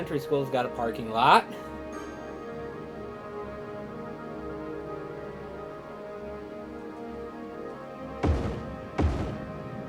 school's got a parking lot.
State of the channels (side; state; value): both; identical; correlation 1.00